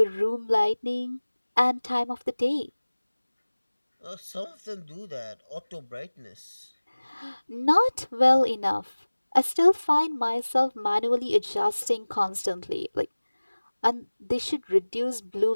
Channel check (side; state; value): both; inverted; correlation -1.00